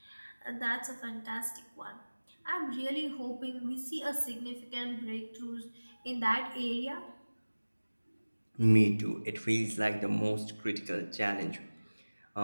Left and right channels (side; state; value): both; inverted; correlation -1.00